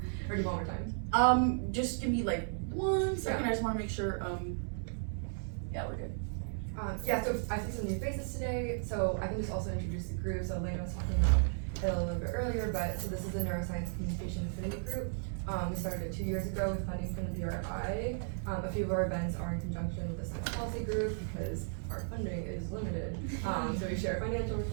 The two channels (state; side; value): silent; left; digital silence